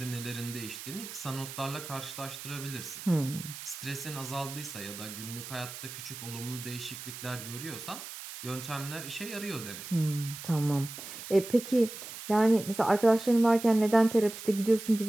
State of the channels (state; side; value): noise; right; hiss, 11 dB below the sound